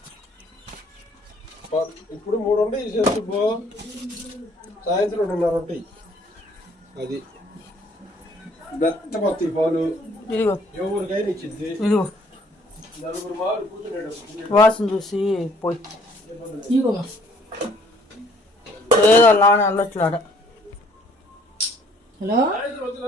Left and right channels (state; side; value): normal; both; correlation 0.61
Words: ఇప్పుడు 3 ఉంటాయి, సాయంత్రం 2:30 ఉంటాయి. అది మెత్తపత్తి పాలు ఎవరికైనా ఇచ్చింది. ఇదిగో నలుగురు మాలు కూర్చున్నాడు. వాసన చూసి పోయి ఏదో నాన్న అల్లట్లాడ. Hello